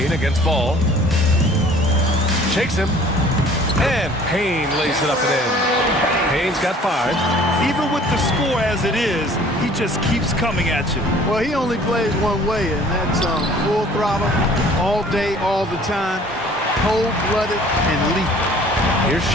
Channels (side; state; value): both; normal; correlation 0.52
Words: against Ball. Shakes him. And Payne lays it up and in. Payne's got 5. Even with the score as it is, he just keeps coming at you. Well, he only plays one way, and that's full throttle, all day, all the time, cold-blooded and lethal. Here's